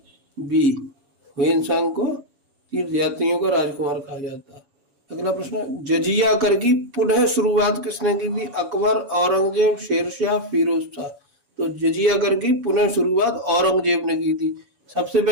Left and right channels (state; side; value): late; left; 7.2 ms